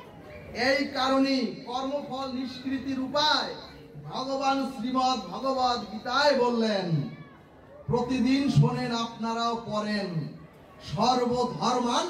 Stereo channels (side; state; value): both; identical; correlation 1.00